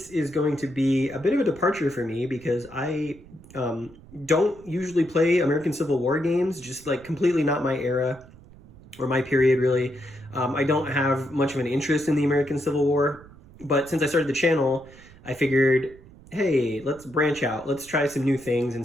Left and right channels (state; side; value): noise; right; rumble, 22 dB below the sound